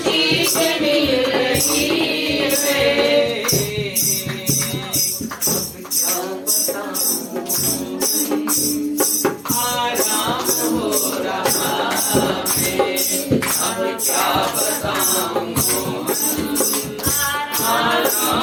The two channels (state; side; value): identical; both; correlation 1.00